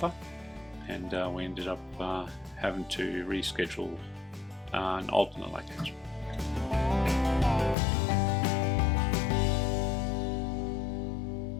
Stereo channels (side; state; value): right; drops out; at 7.8 s